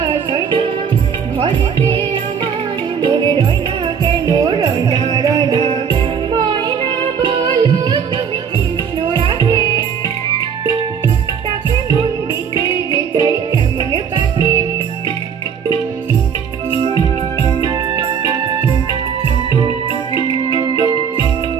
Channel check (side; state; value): left; quieter; 7.2 dB